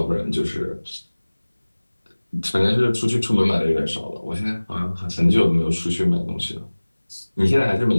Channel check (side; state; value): both; inverted; correlation -1.00